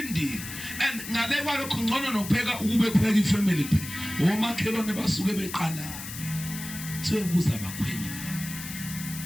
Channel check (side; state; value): left; noise; hiss, 10 dB below the sound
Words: and ngale kwalokho ngcono nokupheka ukube kupheka ifamily phela omakhelwane basuke beqala sebuza abakhwenyana